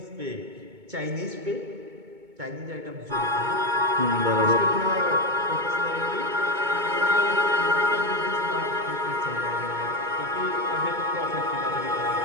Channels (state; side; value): late; left; 2.2 ms